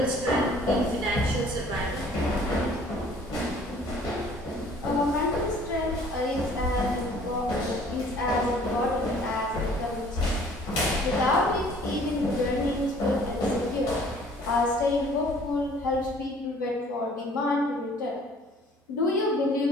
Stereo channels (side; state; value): both; normal; correlation 0.54